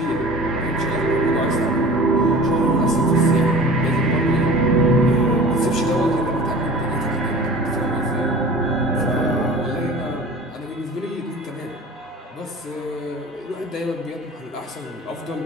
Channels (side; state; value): both; normal; correlation 0.41